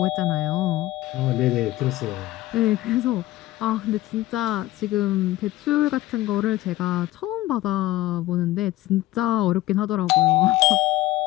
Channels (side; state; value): right; quieter; 16.4 dB